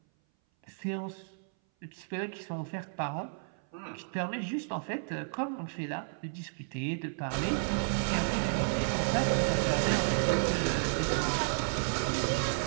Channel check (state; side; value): silent; left; 56 dB below the other